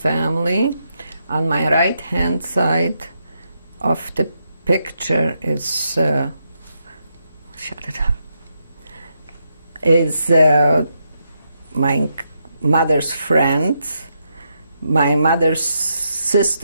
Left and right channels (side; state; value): both; inverted; correlation -0.81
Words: On my right-hand side of the picture is my mother's friends. My mother's